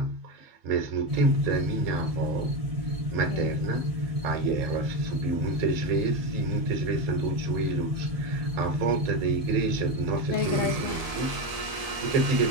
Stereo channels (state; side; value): late; left; 1.8 ms